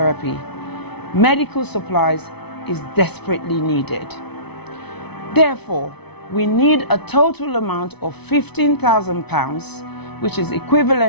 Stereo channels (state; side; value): late; right; 0.99 ms